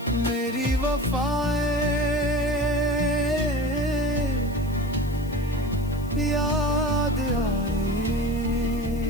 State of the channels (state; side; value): noise; left; hiss, 22 dB below the sound